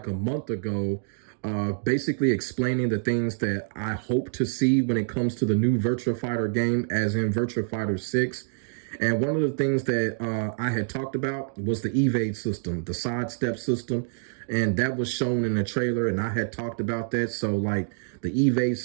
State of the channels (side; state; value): left; silent; digital silence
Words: a month ago, basically explaining the things that I hope to see when it comes to the new Virtua Fighter game, as in Virtua Fighter 6. And one of the things that I had talked about was the evade system, the sidestep system. And that was shown in the trailer, and I had talked about that. So, like, the evade